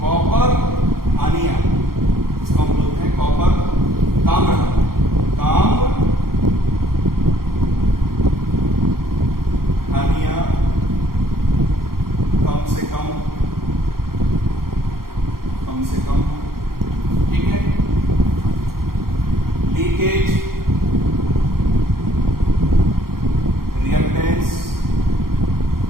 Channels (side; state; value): left; late; 0.93 ms